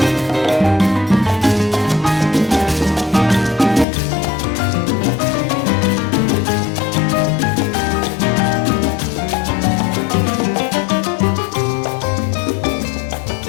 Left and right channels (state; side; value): drops out; right; at 3.9 s